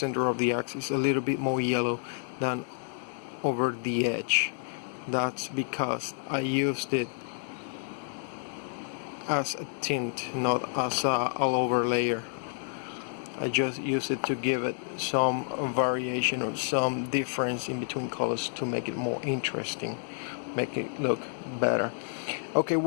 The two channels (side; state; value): right; silent; 58 dB below the other